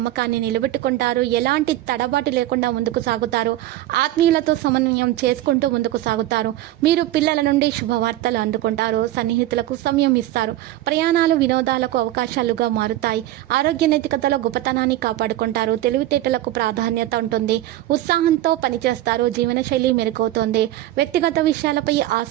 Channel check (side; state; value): left; quieter; 15.0 dB